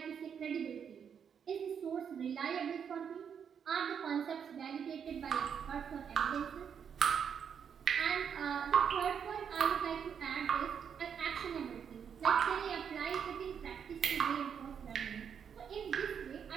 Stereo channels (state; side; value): quieter; left; 7.5 dB